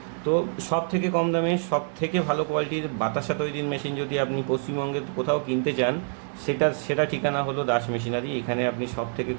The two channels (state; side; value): silent; left; digital silence